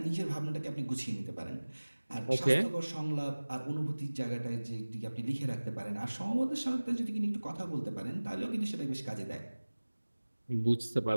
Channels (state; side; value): inverted; both; correlation -1.00